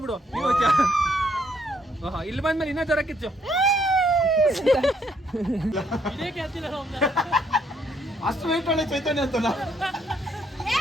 ಇಲ್ಲಿ ಬಂದ್ಮೇಲೆ ಇನ್ನೂ ಜ್ವರ ಕಿಚ್ಚು. ಅಷ್ಟು ವೆಯ್ಟ್ ಒಳ್ಳೆ ಚೈತನ್ಯ ಅಂತಲ್ಲ.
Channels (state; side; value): normal; both; correlation 0.70